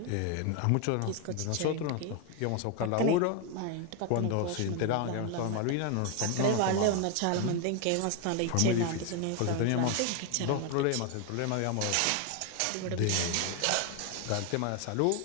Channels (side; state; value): both; different; correlation 0.01